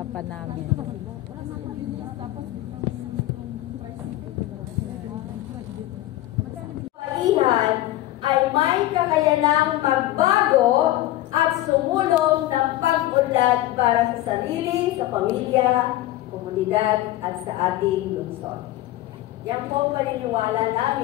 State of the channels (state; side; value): quieter; right; 15.6 dB